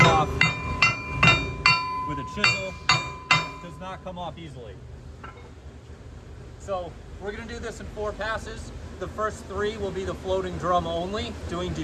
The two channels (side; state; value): both; identical; correlation 1.00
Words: off with a chisel. Does not come off easily. So we're gonna do this in 4 passes. The first 3 will be the floating drum only, doing